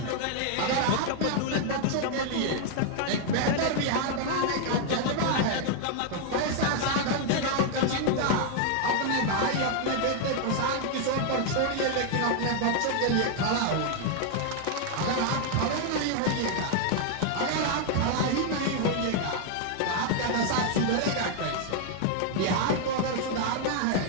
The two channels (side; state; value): both; different; correlation 0.00